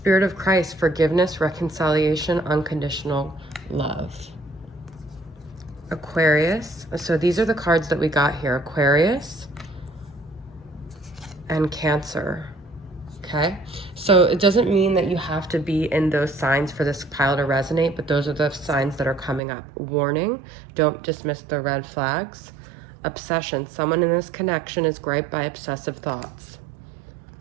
of Christ, forgiveness, reconciliation, unconditional love. Aquarius. So these are the cards that we got here. Aquarius and Cancer. Okay, so it doesn't mean that you have to be in those signs for this pile to resonate, but those are the signs that are coming up. Warning, don't dismiss the red flags. Obsession, someone in this connection is griped by obsessive thoughts.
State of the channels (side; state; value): left; drops out; at 19.4 s